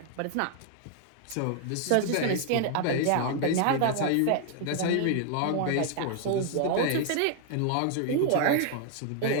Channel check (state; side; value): different; both; correlation 0.00